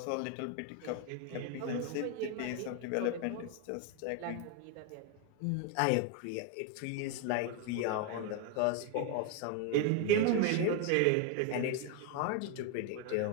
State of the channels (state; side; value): different; both; correlation 0.01